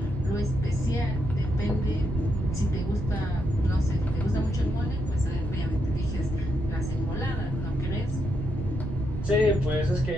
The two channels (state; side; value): noise; right; rumble, 5 dB below the sound